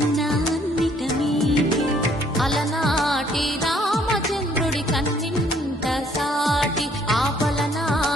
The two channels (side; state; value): both; normal; correlation 0.63